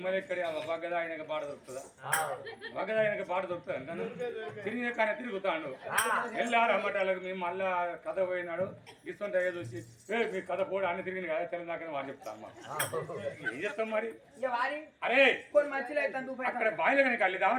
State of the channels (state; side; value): identical; both; correlation 1.00